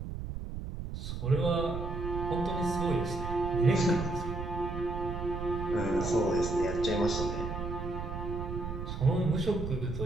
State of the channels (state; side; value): noise; right; rumble, 6 dB below the sound